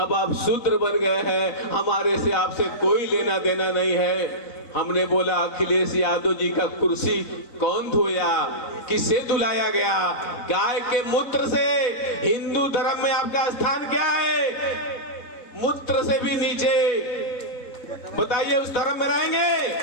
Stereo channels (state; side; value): late; right; 4.1 ms